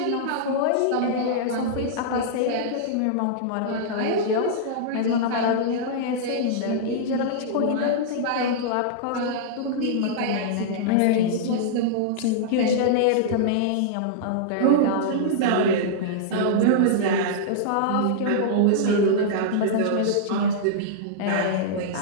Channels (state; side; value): different; both; correlation -0.02